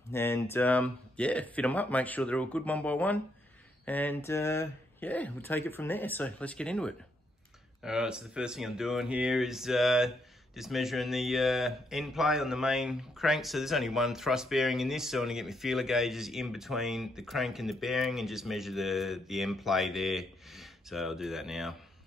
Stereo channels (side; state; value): both; normal; correlation 0.76